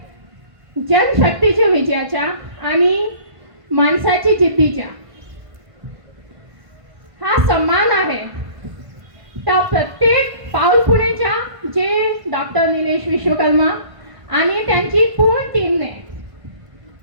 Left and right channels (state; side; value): late; left; 1.5 ms